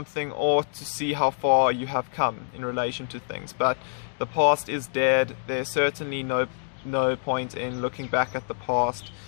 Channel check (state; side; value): silent; right; digital silence